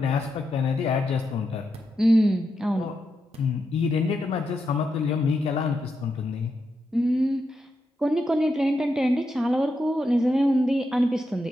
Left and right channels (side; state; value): both; normal; correlation 0.85